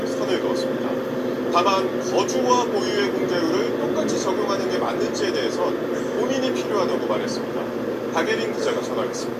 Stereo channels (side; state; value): both; identical; correlation 1.00